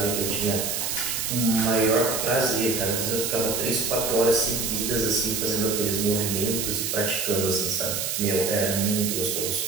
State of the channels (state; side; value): noise; right; hiss, 1 dB below the sound